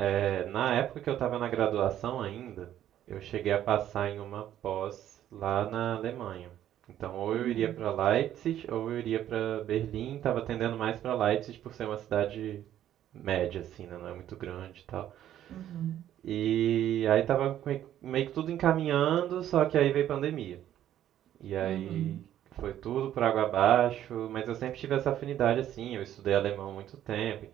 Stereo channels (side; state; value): left; quieter; 11.5 dB